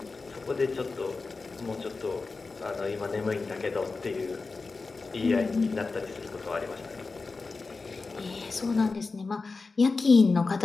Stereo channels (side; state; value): right; quieter; 4.0 dB